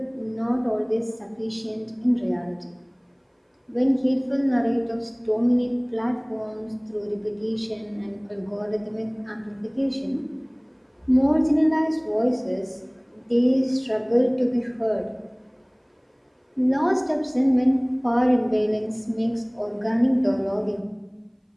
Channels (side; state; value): both; identical; correlation 1.00